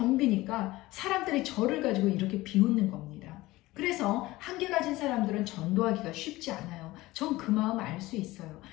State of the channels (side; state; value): right; quieter; 18.8 dB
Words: 사람들이 저를 가지고 이렇게 비웃는 겁니다. 그래서 1개 가진 사람들은 전도하기가 쉽지 않아요. 전 그 마음 알 수 있어요.